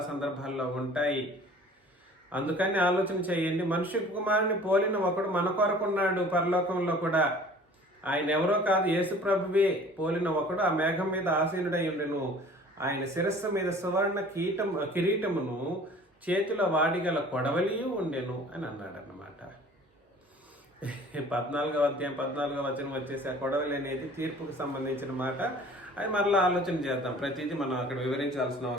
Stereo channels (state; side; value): normal; both; correlation 0.48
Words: సందర్భాల్లో ఉంటాయి. అందుకని ఆలోచన చేయండి. మనిషి కుమారుని పోలిన ఒకడు మన కొరకున్నాడు పరలోకంలో కూడా. ఆయన ఎవరో కాదు, యేసు ప్రభువే పోలిన ఒకడు ఆ మేఘం మీద ఆసీనుడై ఉండెను. ఆయన శిరస్సు మీద సువర్ణ కిరీటమును చేతిలో వాడిగల కొడవలియు ఉండెను అని అన్నాడు అన్నమాట. 14వ అధ్యాయం 14వ వచనం వచ్చేసి ఆ కొడవలి అనేది తీర్పుకు సంబంధించిన మాట. అది మరలా ఆలోచన చేద్దాం, ప్రతిదీ మనం అక్కడ వివరించాల్సిన